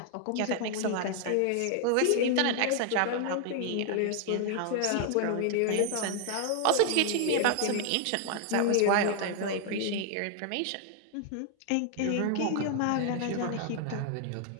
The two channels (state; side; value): different; both; correlation 0.00